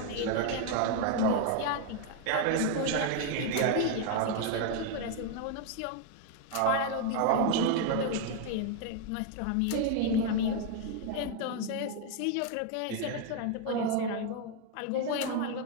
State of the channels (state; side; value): different; both; correlation 0.01